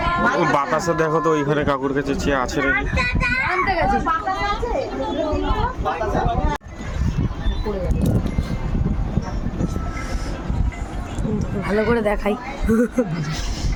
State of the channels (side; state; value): both; identical; correlation 1.00